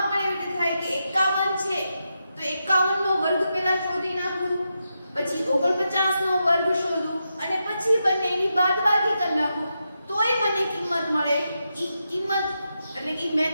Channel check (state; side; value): inverted; both; correlation -0.86